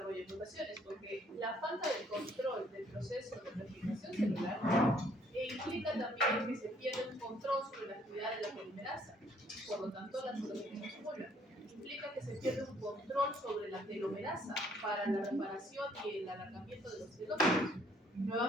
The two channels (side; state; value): both; normal; correlation 0.64